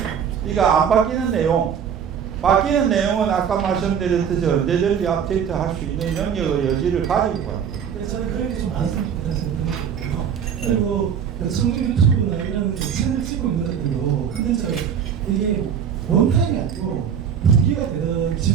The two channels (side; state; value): left; quieter; 7.9 dB